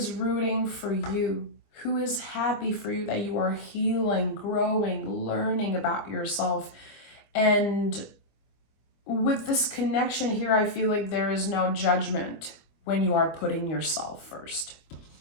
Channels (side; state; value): right; late; 25 ms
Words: rooting for you, who is happy for you, that you are healing, growing, learning about yourself. And with this connection here, I feel like there is no judgment when you are putting yourself first.